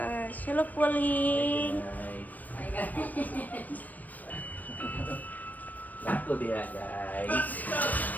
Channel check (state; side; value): late; right; 0.081 ms